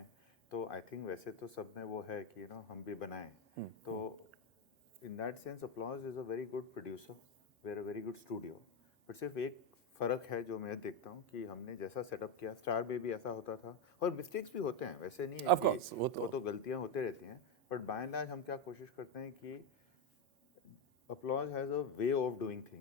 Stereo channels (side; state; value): both; normal; correlation 0.08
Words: तो आई थिंक वैसे तो सब में वो है कि हम भी बनाएं। तो in that sense Applause is a very good producer, we are a very good studio. But सिर्फ एक फ़र्क है जो मैं देखता हूँ कि हमने जैसा सेटअप किया, स्टार में भी ऐसा होता था, और मिस्टेक्स भी होते हैं, वैसे नहीं है Of कि course, वो तो गलतियाँ होते रहती हैं। बट बाय एंड लार्ज हम क्या कोशिश करते हैं कि applause has a way of doing